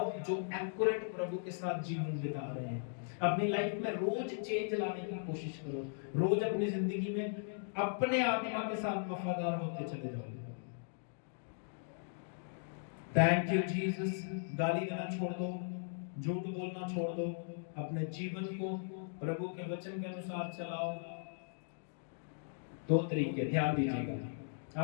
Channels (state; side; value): silent; right; digital silence